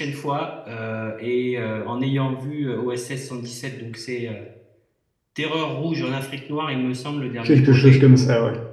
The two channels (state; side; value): identical; both; correlation 1.00